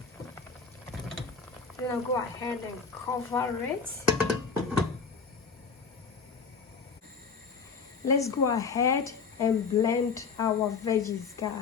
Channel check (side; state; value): right; quieter; 5.4 dB